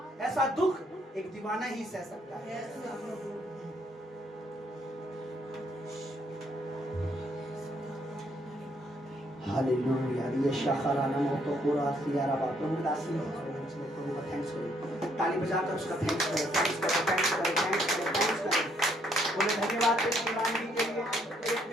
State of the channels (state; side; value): normal; both; correlation 0.70